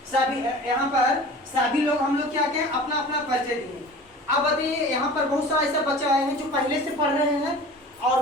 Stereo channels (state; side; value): normal; both; correlation 0.40